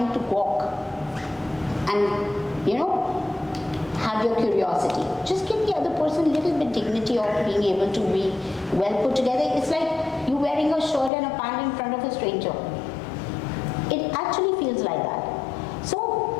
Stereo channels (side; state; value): right; drops out; at 11.1 s